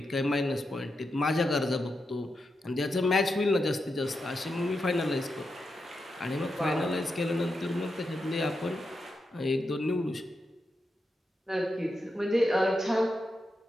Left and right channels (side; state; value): both; normal; correlation 0.86